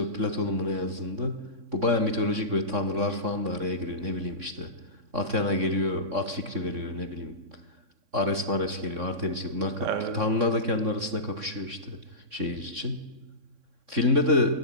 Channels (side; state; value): left; late; 3.6 ms